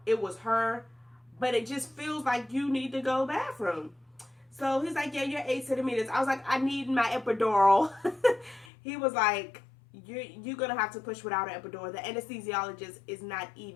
it was her, but it just feels like you need to go to the bathroom. So he's like, yeah, you're 8 centimeters. I was like, I need my epidural. He was like, you're going to have to push without an epidural. The anesthesiologist is not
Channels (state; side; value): drops out; right; at 8.7 s